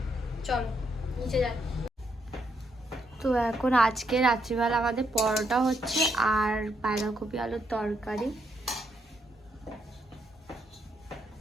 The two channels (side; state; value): both; normal; correlation 0.76